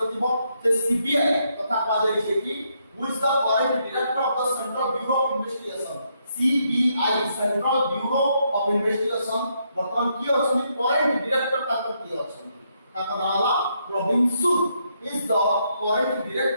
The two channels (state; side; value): inverted; both; correlation -0.76